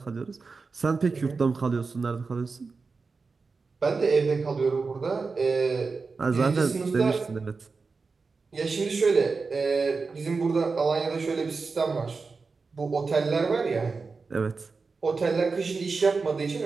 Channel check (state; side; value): quieter; left; 4.4 dB